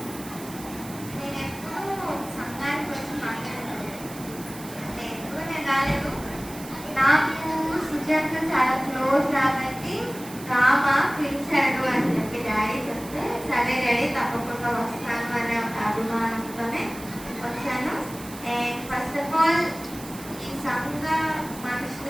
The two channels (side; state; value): right; noise; hiss, 15 dB below the sound